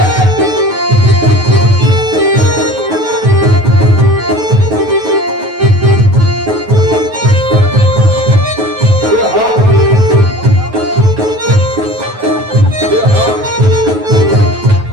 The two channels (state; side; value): late; left; 9.3 ms